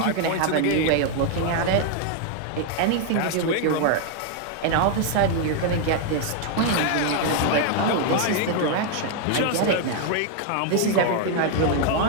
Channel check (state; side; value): different; both; correlation 0.00